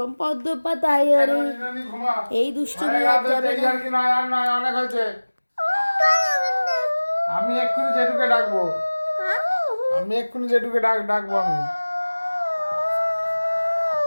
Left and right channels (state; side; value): inverted; both; correlation -1.00